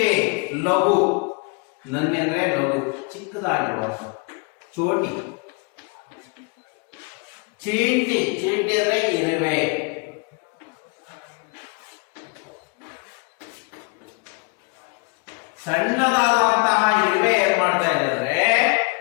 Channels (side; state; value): right; quieter; 32.5 dB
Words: ಲಘು. ನನ್ನಿ ಅಂದ್ರೆ ಲಘು, ಚಿಕ್ಕದಾಗಿರುವ, ಚೋಟಿ. ಚೀಂಟಿ, ಚೀಂಟಿ ಅಂದ್ರೆ ಇರುವೆ. ಸಣ್ಣದಾದಂತಹ ಇರುವೆ ಏನ್ ಮಾಡ್ತಾ ಇದ್ದಾರೆ,